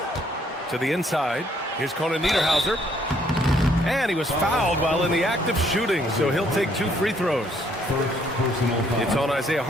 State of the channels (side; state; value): both; normal; correlation 0.67